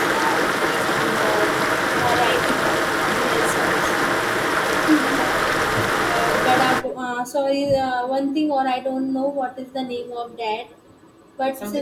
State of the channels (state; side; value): identical; both; correlation 1.00